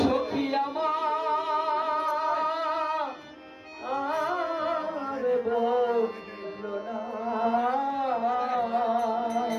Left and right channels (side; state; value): both; identical; correlation 1.00